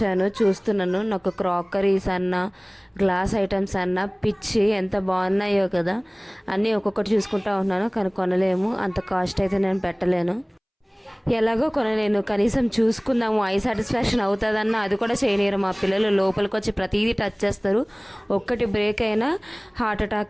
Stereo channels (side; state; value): both; identical; correlation 1.00